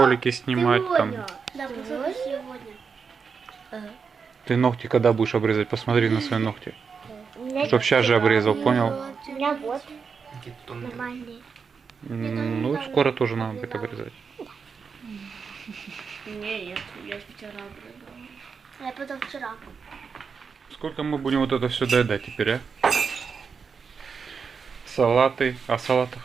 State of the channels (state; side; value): quieter; left; 5.7 dB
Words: снимать. Там. Да, посылка сегодня. Ты ногти когда будешь обрезать? Посмотри на свои ногти. Чтоб сейчас же обрезал, понял? У меня вот Какие тонкие. нормальные. Ну, скоро тоже надо будет обрезать. Не, я вчера обрыгала. Я потом вчера. Сколько мы будем вот это все доедать теперь, а? Салаты. А салата